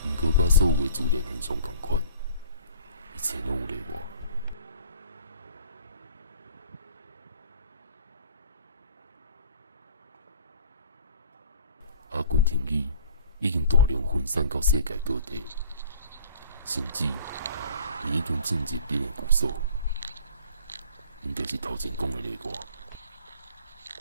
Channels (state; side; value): inverted; both; correlation -0.49